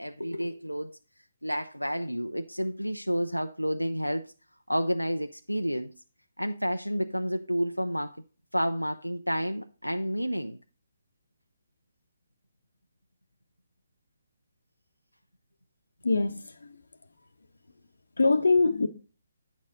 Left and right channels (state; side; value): inverted; both; correlation -0.96